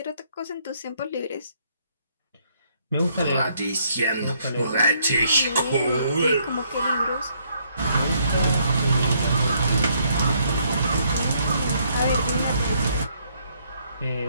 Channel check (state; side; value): inverted; both; correlation -0.70